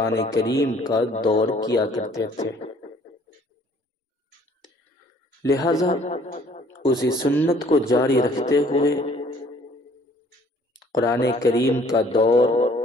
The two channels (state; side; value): normal; both; correlation 0.58